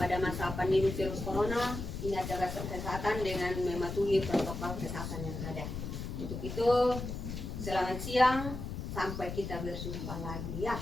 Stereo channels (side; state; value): left; noise; rumble, 6 dB below the sound